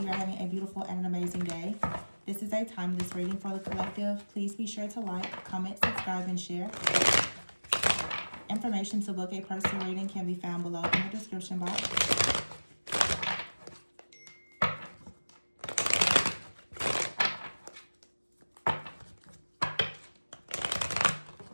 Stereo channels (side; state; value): both; inverted; correlation -1.00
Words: are having a beautiful and an amazing day. This is a timeless reading for the collective. Please be sure to like, comment, subscribe, and share. Information to book a personal reading can be found below in the description box.